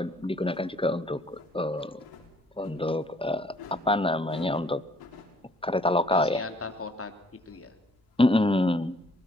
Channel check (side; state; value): both; normal; correlation 0.62